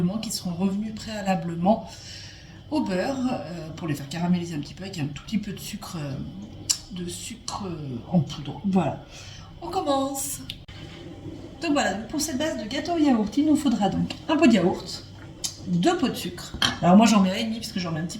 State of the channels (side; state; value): both; identical; correlation 1.00